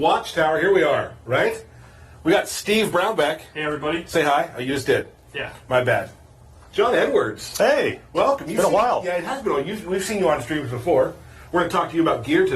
Here we are, right? We got Steve Brownback. Hey, everybody. Say hi. Oh, you just did. Yeah. My bad. John Edwards. Hey. Welcome. It's been a while. Yeah, it has been a while. We've seen you on streams before. We're going to talk to you about gear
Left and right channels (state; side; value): identical; both; correlation 1.00